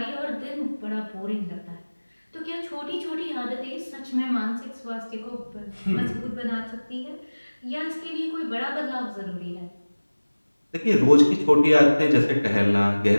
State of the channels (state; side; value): inverted; both; correlation -1.00